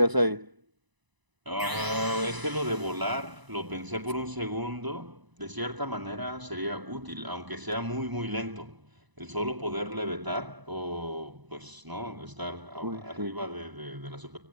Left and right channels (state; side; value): late; left; 1.0 ms